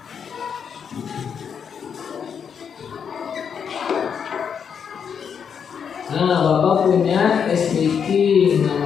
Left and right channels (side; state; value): right; quieter; 7.2 dB